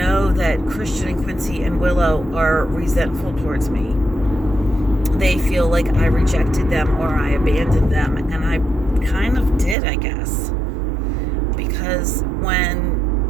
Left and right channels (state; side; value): drops out; left; at 9.8 s